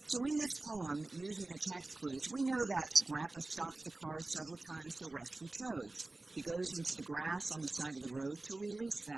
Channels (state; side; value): quieter; left; 3.1 dB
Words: So in this poem, using the text clues, we know that Grandpa stops the car several times to rescue toads. He goes into the grass on the side of the road to release